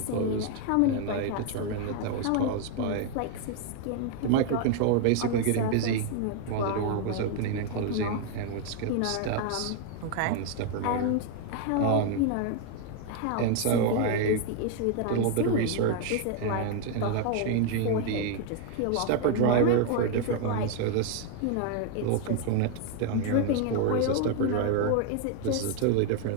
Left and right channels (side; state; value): both; different; correlation 0.01